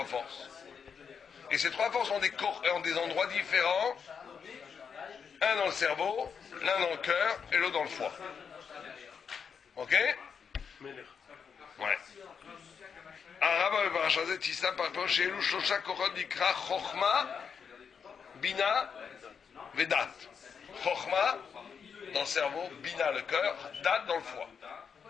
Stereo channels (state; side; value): quieter; right; 6.6 dB